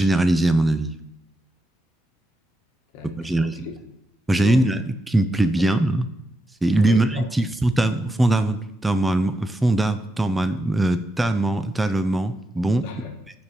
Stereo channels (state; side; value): normal; both; correlation 0.86